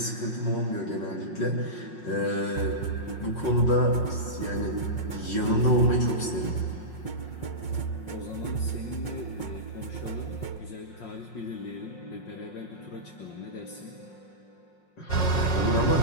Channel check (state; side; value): late; right; 5.5 ms